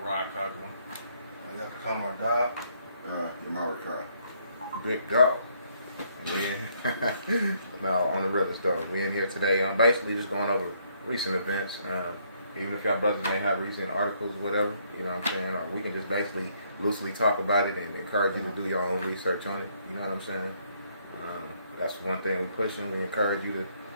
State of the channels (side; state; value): both; inverted; correlation -0.70